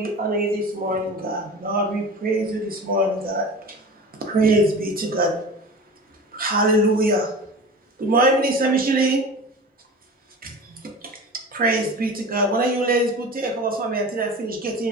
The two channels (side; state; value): both; normal; correlation 0.34